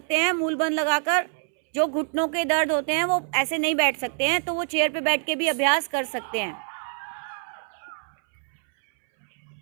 हैं मूल बंध लगाकर। जो घुटनों के दर्द होते हैं वो ऐसे नहीं बैठ सकते हैं, तो वो चेयर पे बैठ के भी अभ्यास कर सकते हैं।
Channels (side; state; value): left; silent; 61 dB below the other